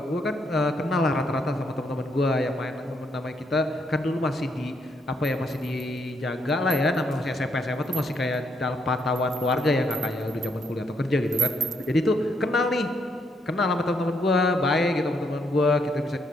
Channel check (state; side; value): normal; both; correlation 0.75